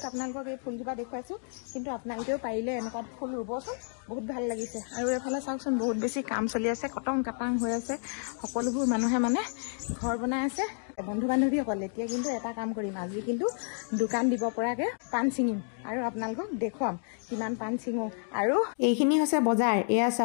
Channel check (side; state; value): right; silent; 58 dB below the other